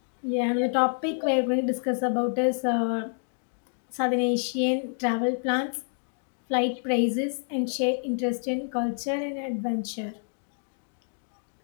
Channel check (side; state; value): right; silent; digital silence